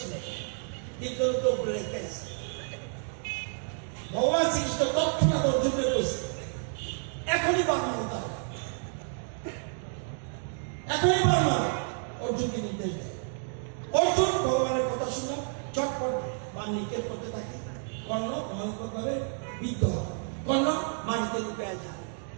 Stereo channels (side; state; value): left; silent; 58 dB below the other